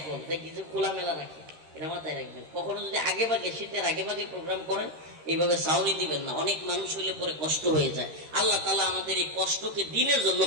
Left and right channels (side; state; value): left; late; 13 ms